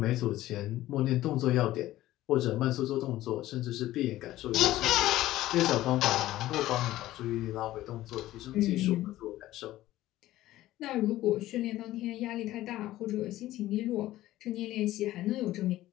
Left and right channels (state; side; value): quieter; right; 15.3 dB